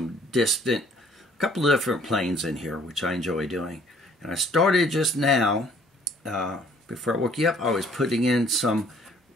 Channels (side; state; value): both; normal; correlation 0.58